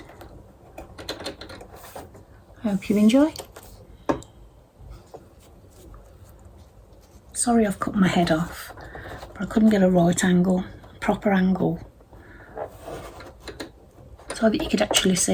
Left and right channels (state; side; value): identical; both; correlation 1.00